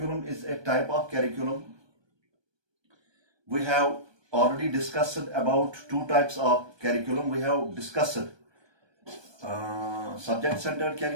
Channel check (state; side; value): late; left; 1.2 ms